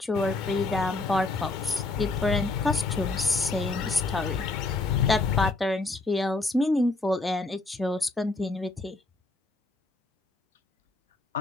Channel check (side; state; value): right; quieter; 3.2 dB